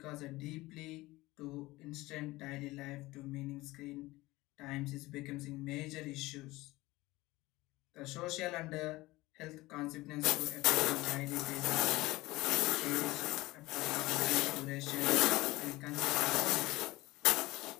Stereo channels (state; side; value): quieter; right; 19.8 dB